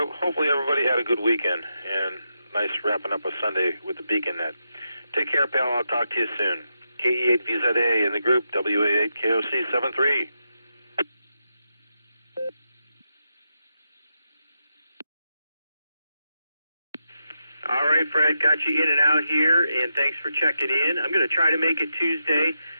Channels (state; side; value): inverted; both; correlation -0.86